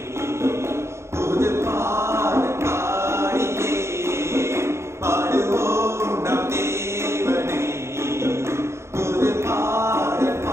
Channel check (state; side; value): late; left; 0.13 ms